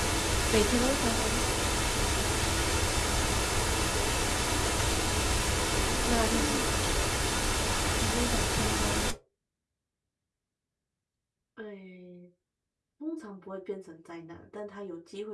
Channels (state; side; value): identical; both; correlation 1.00